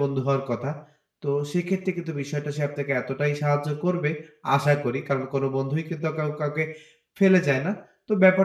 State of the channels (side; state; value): both; identical; correlation 1.00